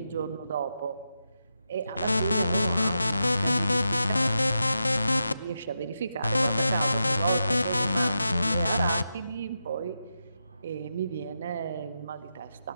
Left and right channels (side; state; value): both; inverted; correlation -0.87